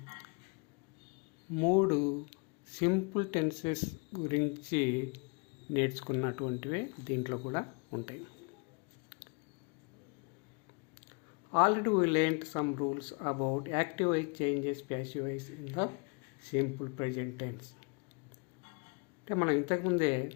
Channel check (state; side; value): quieter; right; 33.7 dB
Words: 3 సింపుల్ టెన్సెస్ గురించి నేర్చుకున్నటువంటివే దీంట్లో కూడా ఉంటాయి. Already we learned some rules about active voice changes passive voice in the simple present tense. అంటే మనం ఇంతకుముందే